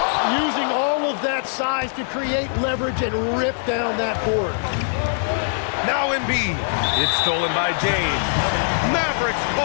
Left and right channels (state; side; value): silent; right; digital silence